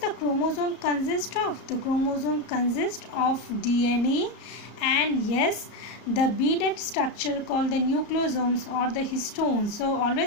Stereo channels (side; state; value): right; late; 34 ms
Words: chromosome consist of? The chromosome consists of DNA and yes, the beaded structure called the nucleosomes or the histones. So